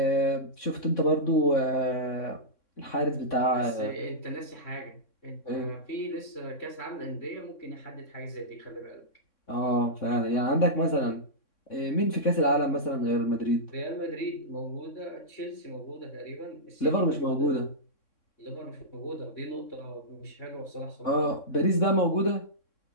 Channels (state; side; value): late; right; 3.6 ms